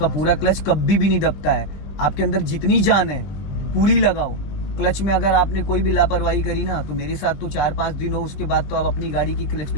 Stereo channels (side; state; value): right; late; 20 ms